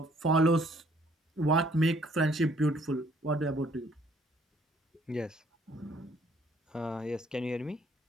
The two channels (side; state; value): both; normal; correlation 0.63